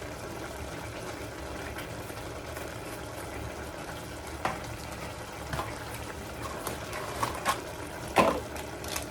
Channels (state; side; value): identical; both; correlation 1.00